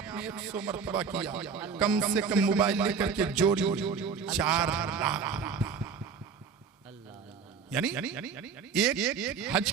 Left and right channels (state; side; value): quieter; left; 5.9 dB